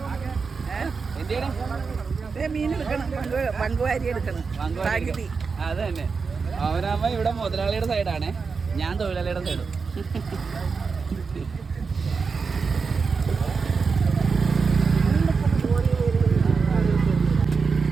എന്തിനാണ് അത് തന്നെ. ഓമനാമ്മ ഇവിടെ മുതലാളിയുടെ സൈഡാണ്, ഞാൻ തൊഴിലാളിയുടെ സൈഡും.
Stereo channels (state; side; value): quieter; left; 5.0 dB